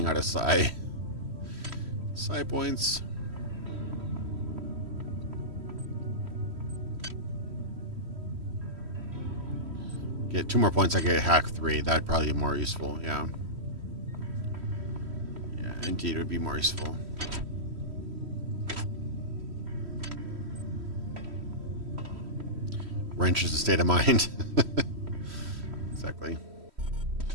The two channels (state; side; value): late; left; 3.1 ms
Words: out of psi points. Get 2 more points, I get hack 3. That'd probably be more useful, yeah. Yeah, indeed, it would be more useful. Wrench is a state of mind. Exactly.